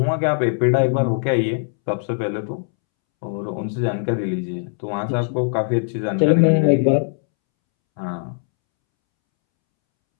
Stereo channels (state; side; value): silent; right; 65 dB below the other